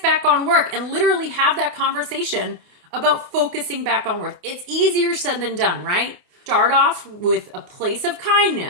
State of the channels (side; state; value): left; late; 28 ms